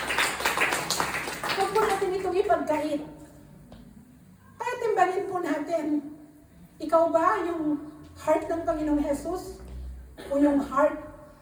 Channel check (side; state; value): both; identical; correlation 1.00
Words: Huwag po natin itong ipagkait. Kaya timbangin po natin, ikaw ba yung heart ng Panginoong Hesus o yung heart